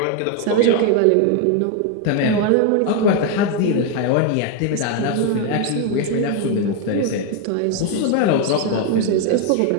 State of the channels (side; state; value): both; different; correlation 0.01